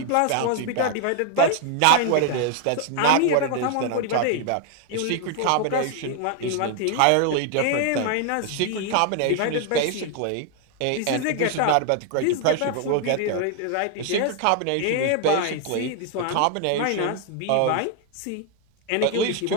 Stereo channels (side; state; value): both; different; correlation 0.00